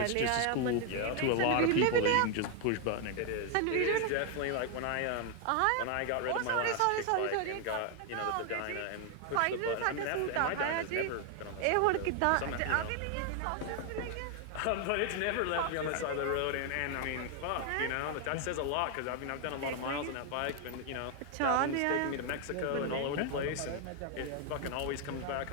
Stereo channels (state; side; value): different; both; correlation 0.01